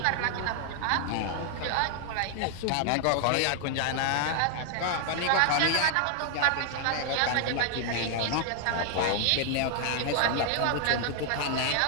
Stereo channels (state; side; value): different; both; correlation 0.00